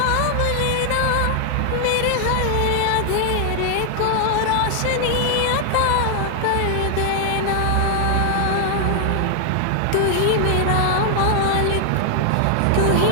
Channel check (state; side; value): different; both; correlation 0.00